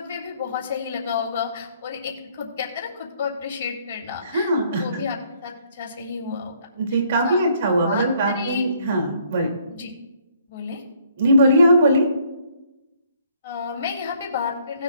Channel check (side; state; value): both; inverted; correlation -0.65